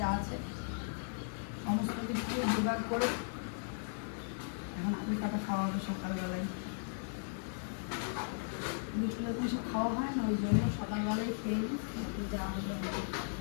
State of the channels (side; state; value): right; silent; 53 dB below the other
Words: যা আছে সমস্ত কিছু জোগাড় করে এখন আলু কাটা খাওয়া হবে সকালবেলায়। বিকেলে তো সব খাওয়া হয় না, ওই জন্য সকালবেলায় খেয়ে নিই, যা হবে।